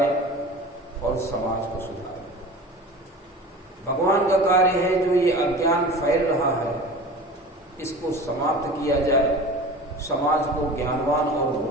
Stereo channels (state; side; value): normal; both; correlation 0.37